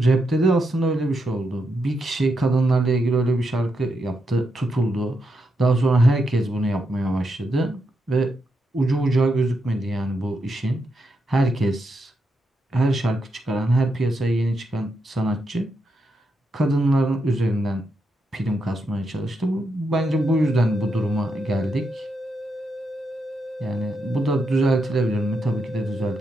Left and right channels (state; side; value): normal; both; correlation 0.83